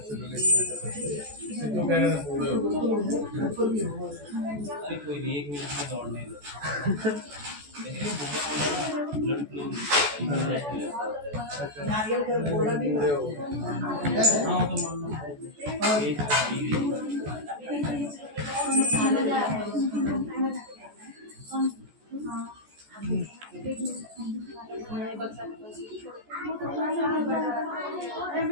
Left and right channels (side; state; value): left; late; 14 ms